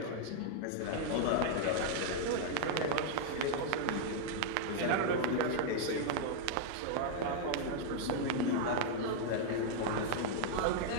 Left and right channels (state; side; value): different; both; correlation -0.01